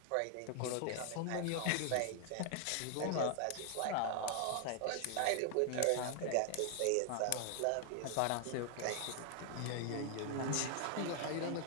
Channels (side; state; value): both; different; correlation 0.00